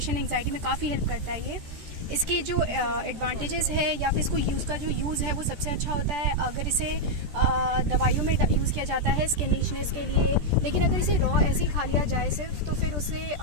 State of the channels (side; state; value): left; late; 13 ms